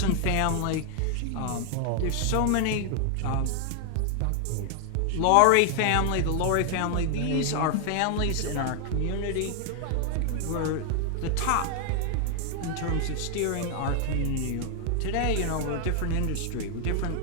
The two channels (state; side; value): different; both; correlation 0.00